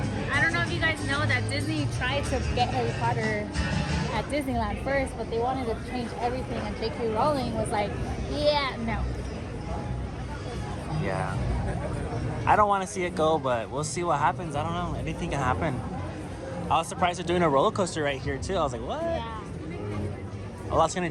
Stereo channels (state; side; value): identical; both; correlation 1.00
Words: I don't know if you guys know that Disney tried to get Harry Potter at Disneyland first, but they wanted to change everything, and J.K. Rowling was like, yeah, no. Yeah. I don't want to see it go, but we'll see what happens. I don't know. Anything can happen. I was surprised they're doing a roller coaster right here too. I was like, what? Yeah. A lot's gonna